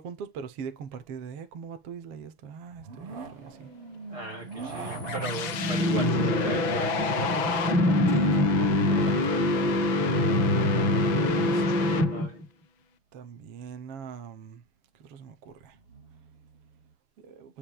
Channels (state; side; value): late; left; 6.1 ms